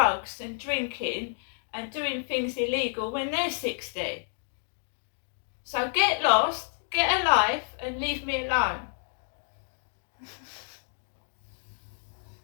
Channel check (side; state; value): right; silent; digital silence